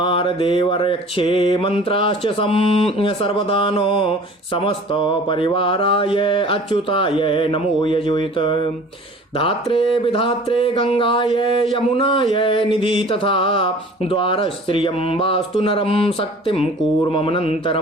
मंत्राश्च सर्वदानो समस्त परिवाराय अच्युताय नमो यजुत। धात्रे विधात्रे गंगाय यमुनाय निधि तथा द्वारस्त्रियं वास्तु नरं शक्तिं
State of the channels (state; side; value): normal; both; correlation 0.46